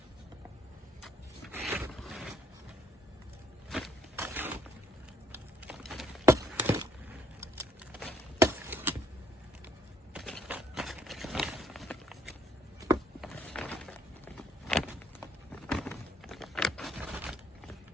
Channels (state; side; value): normal; both; correlation 0.67